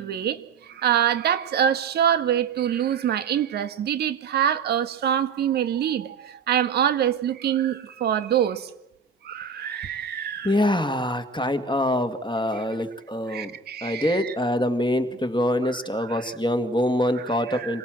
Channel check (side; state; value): left; quieter; 4.1 dB